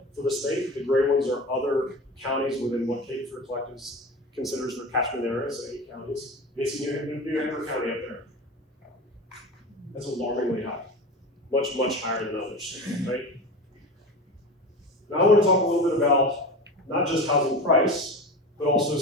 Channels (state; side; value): normal; both; correlation 0.29